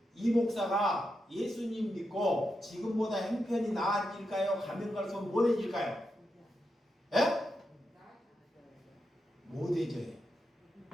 이 목사가 예수님 믿고 지금보다 형편이 나아질까요? 가면 갈수록 못해질까요? 예? 못해져요.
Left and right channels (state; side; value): normal; both; correlation 0.86